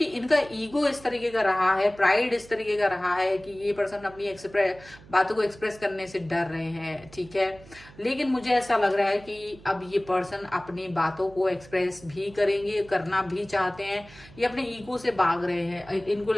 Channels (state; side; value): noise; right; hum, 21 dB below the sound